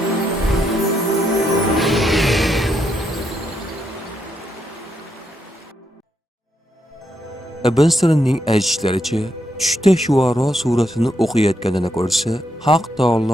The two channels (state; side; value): normal; both; correlation 0.80